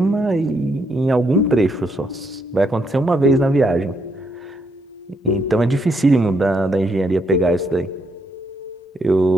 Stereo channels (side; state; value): both; normal; correlation 0.75